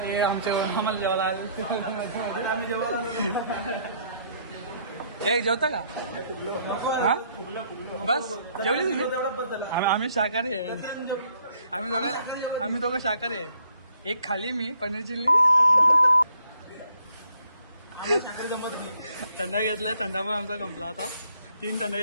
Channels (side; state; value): both; inverted; correlation -0.66